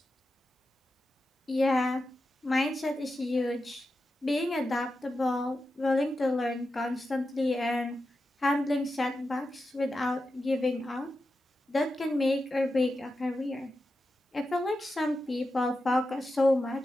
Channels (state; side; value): normal; both; correlation 0.90